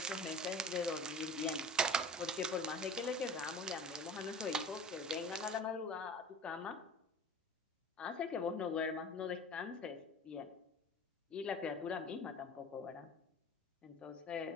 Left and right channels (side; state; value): both; normal; correlation 0.40